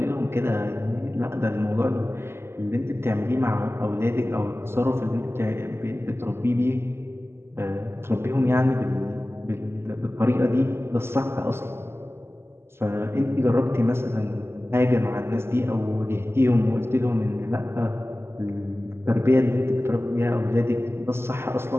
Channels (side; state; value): left; late; 0.12 ms